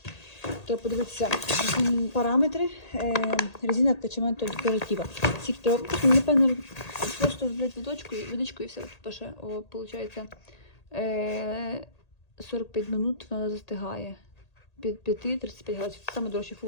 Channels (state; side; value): late; right; 1.8 ms